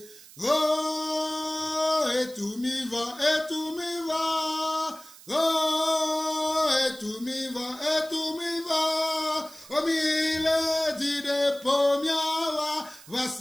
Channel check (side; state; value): right; noise; hiss, 20 dB below the sound